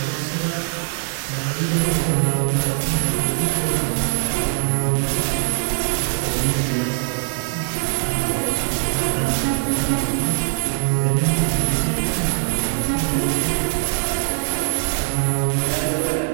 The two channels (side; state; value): left; silent; 65 dB below the other